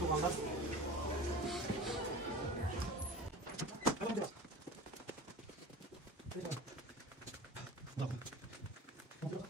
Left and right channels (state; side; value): normal; both; correlation 0.37